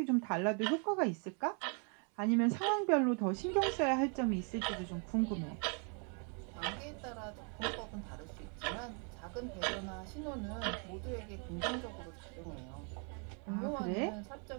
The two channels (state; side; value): quieter; left; 38.9 dB